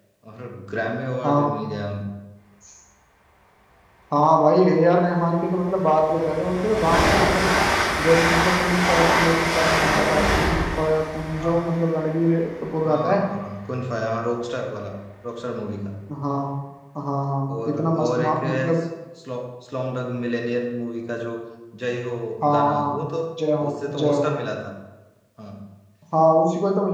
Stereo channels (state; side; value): identical; both; correlation 1.00